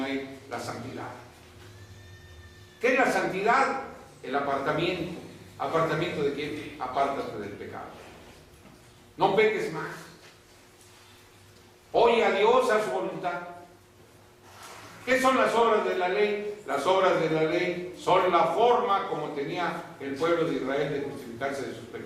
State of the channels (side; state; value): both; identical; correlation 1.00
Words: la santidad. ¿Qué es la santidad? El apartamiento. ¿Apartamiento de quién? Apártate del pecado. No peques más. Oye a Dios, a su voluntad. ¿Qué son las obras de la ley? Las obras de la ley son la forma como tenía el pueblo de Israel de justificarse de sus